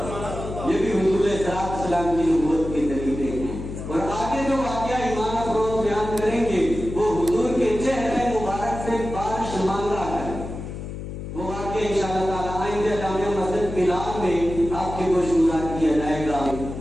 یہ بھی حضور علیہ السلام کی نبوت کے طریقے ہیں، اور آگے جو واقعہ ایمان افروز بیان کریں گے وہ حضور کے چہرے مبارک سے بارش مانگا ہے، وہ واقعہ انشاءاللہ تعالیٰ آئندہ جامع مسجد بلال میں آپ کے گوش گزار کیا جائے گا۔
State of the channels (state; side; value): noise; left; hum, 8 dB below the sound